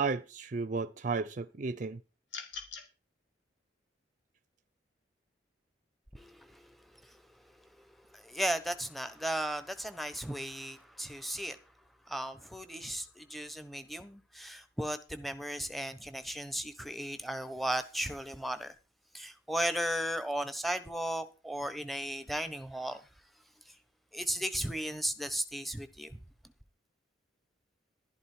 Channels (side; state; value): both; normal; correlation 0.77